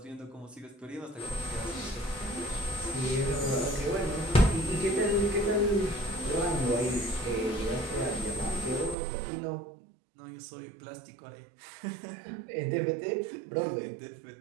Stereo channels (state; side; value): drops out; left; at 9.0 s